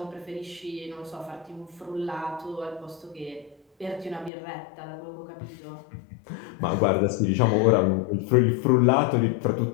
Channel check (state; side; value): drops out; right; at 4.3 s